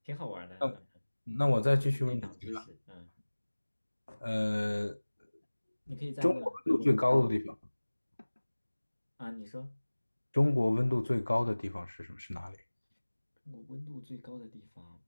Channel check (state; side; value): inverted; both; correlation -1.00